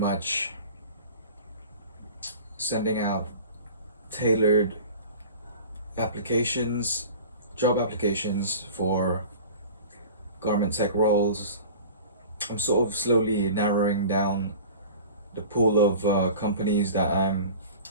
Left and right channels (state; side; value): inverted; both; correlation -0.40